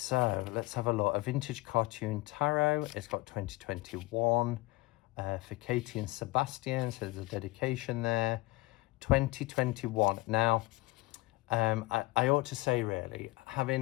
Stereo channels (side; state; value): right; quieter; 20.9 dB